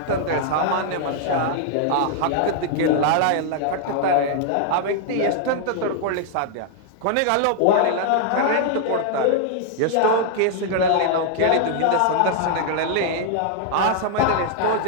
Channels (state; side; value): different; both; correlation -0.01